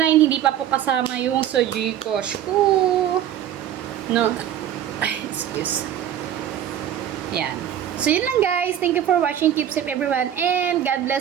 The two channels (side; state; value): left; quieter; 10.5 dB